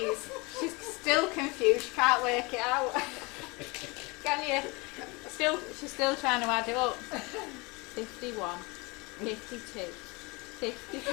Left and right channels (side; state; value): right; quieter; 26.7 dB